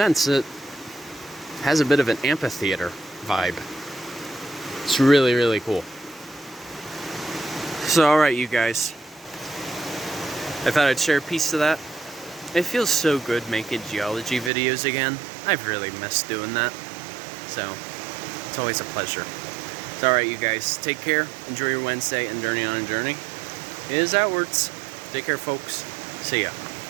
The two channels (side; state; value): left; drops out; at 14.5 s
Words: it has a bit of an amphitheater vibe. It's really, really cool. So alright, you guys. I thought I'd share a piece of that. It feels so good making geology videos again. I've really missed doing that. So, it's always a pleasure. It's alright, you guys. Take care. Enjoy your Wednesday and journey on a journey. It is outwards. Take care, folks. See ya.